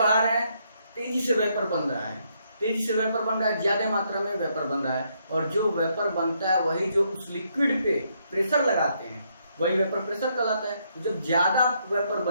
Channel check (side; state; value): both; inverted; correlation -0.74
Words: रहे हैं, तेजी से वेपर बन रहा है, तेजी से वेपर बन रहा है, ज्यादा मात्रा में वेपर बन रहा है। और जो वेपर बनता है वही जो उस लिक्विड पे प्रेशर लगाते हैं वही वेपर प्रेशर कहलाता है। जब ज्यादा वेपर